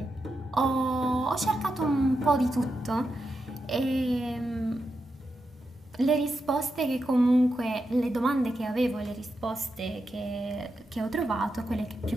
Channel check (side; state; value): both; normal; correlation 0.87